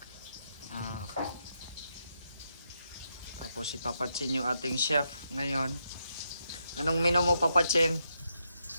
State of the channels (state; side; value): inverted; both; correlation -0.81